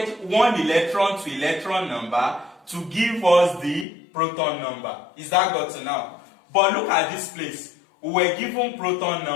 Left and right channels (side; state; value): right; drops out; at 3.9 s